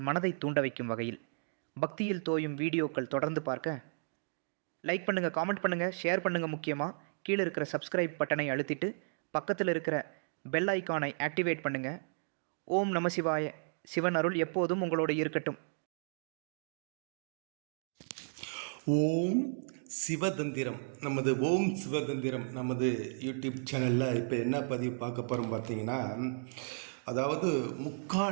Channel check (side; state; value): left; silent; digital silence